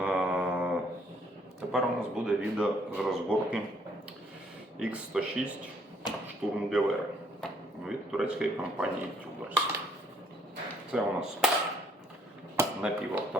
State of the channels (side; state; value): both; normal; correlation 0.67